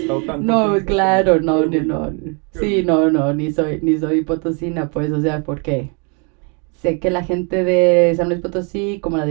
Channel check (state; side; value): quieter; left; 35.7 dB